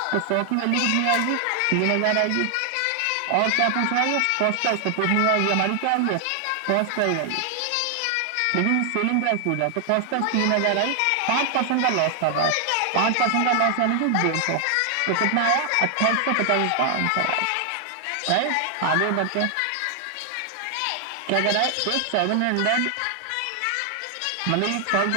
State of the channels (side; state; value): both; different; correlation 0.00